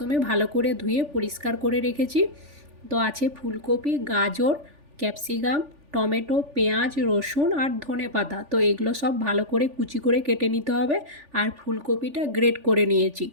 ভালো করে ধুয়ে পরিষ্কার করে রেখেছি। তো আছে ফুলকপি, গাজর, ক্যাপসিকাম, টমেটো, পেঁয়াজ, রসুন আর ধনেপাতা। তো এগুলো সব ভালো করে কুচি করে কেটে নিতে হবে। আর ফুলকপিটা গ্রেট করে নিয়েছি।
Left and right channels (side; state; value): left; late; 3.4 ms